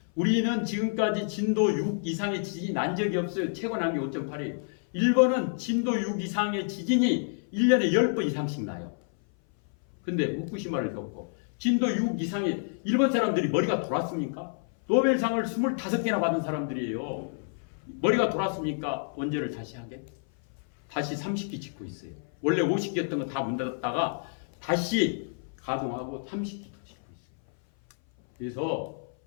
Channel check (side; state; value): right; silent; 57 dB below the other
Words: 우리는 지금까지 진도 6 이상의 지진이 난 적이 없어요. 최고 난 게 5.8이에요. 일본은 진도 6 이상의 지진이 1년에 10번 이상씩 나요. 근데 후쿠시마를 겪고 진도 6 이상의 일본 사람들이 머리가 돌았습니까? 노벨상을 25개나 받은 사람들이에요. 머리가 돌았습니까? 원전을 다시 하게? 다시 30기 짓고 있어요. 원래 50기였던 거 다 문 닫았다가 다시 가동하고 30기 더 짓고 있어요. 그래서